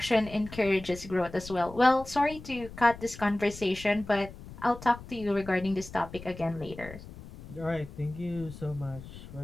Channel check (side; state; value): left; noise; rumble, 15 dB below the sound